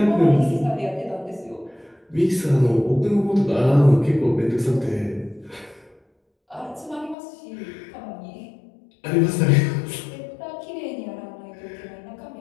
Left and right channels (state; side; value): drops out; right; at 7.2 s